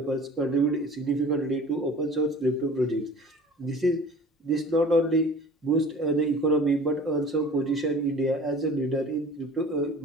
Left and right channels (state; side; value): normal; both; correlation 0.44